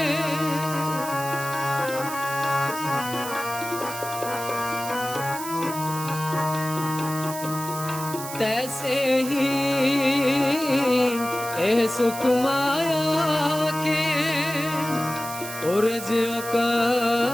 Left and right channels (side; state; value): right; noise; hiss, 10 dB below the sound